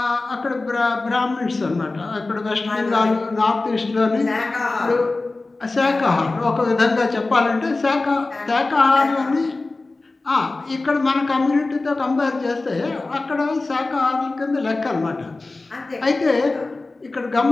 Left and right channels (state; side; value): quieter; right; 3.3 dB